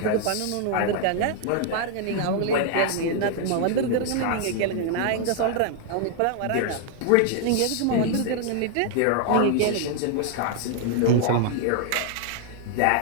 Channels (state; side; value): different; both; correlation 0.00